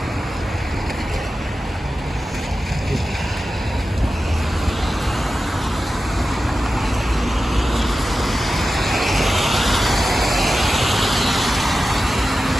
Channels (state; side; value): normal; both; correlation 0.93